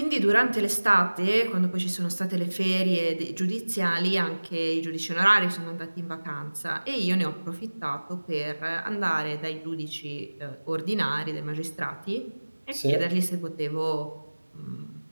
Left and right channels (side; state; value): both; inverted; correlation -1.00